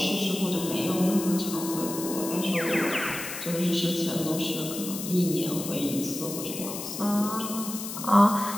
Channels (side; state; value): left; noise; hiss, 8 dB below the sound